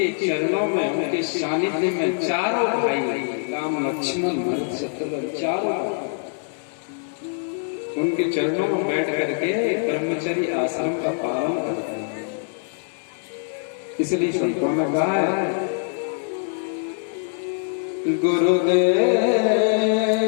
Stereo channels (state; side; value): silent; right; digital silence